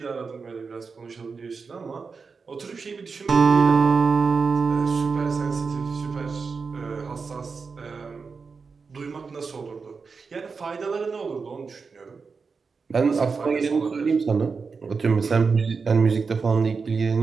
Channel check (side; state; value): left; quieter; 5.0 dB